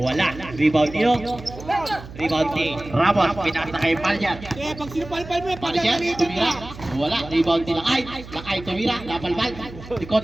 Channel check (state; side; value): noise; right; hum, 15 dB below the sound